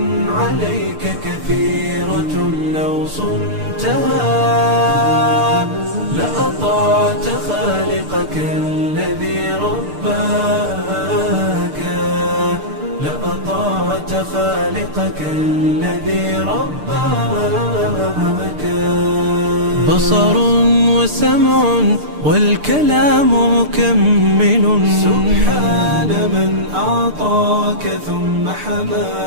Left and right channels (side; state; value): left; late; 6.7 ms